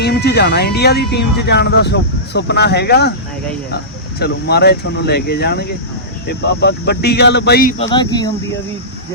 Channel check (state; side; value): normal; both; correlation -0.20